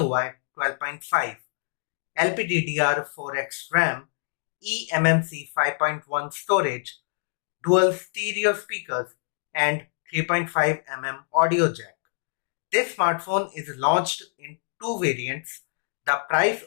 12.5, LPDDR4X RAM, eMMC 5.1 storage, dual stereo speakers and 3.5mm audio jack. This smartphone is launched in two variants. The price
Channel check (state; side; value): silent; right; digital silence